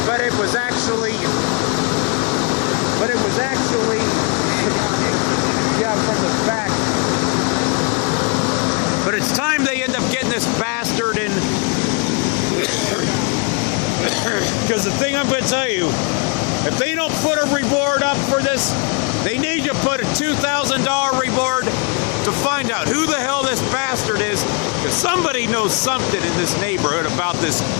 but it was actually, yeah, from the back. But it's time they end up getting this bastard in. Because the thing I'm going to tell you, if they don't put a reward up for this, they need to put a $2,000 reward to find out who the hell this bastard is. Because somebody knows something in this neighborhood about this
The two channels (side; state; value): right; quieter; 34.7 dB